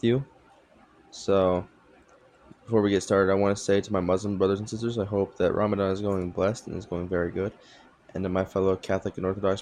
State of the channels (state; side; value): identical; both; correlation 1.00